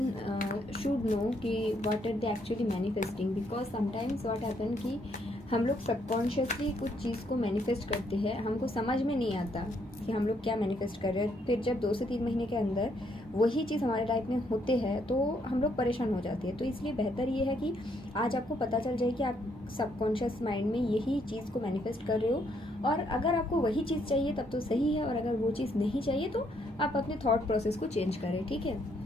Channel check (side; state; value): both; normal; correlation 0.72